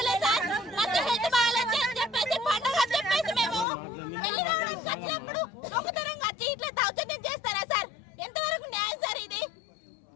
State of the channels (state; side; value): drops out; right; at 3.7 s